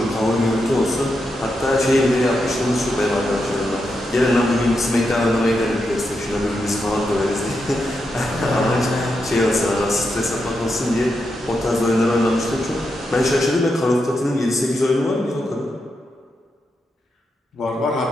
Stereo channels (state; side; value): normal; both; correlation 0.85